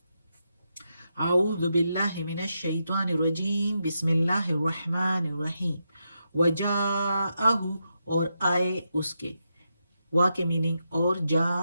اعوذ باللہ من الشیطان الرجیم بسم اللہ الرحمن الرحیم۔ وجاءہ، اور آئے اس کے، وا کے میننگ اور جا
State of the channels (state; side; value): inverted; both; correlation -0.85